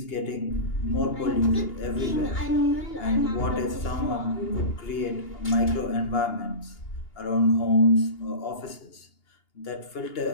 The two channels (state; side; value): late; right; 2.8 ms